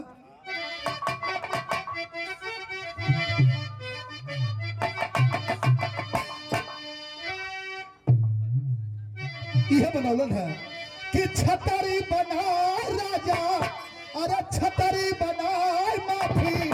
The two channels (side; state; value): both; identical; correlation 1.00